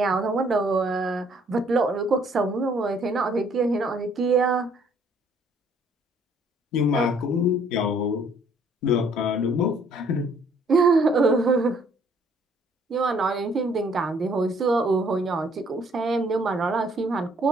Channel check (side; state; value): both; normal; correlation 0.62